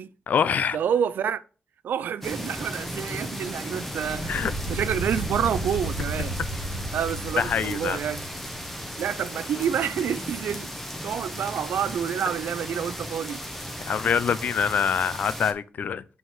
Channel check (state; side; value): normal; both; correlation 0.59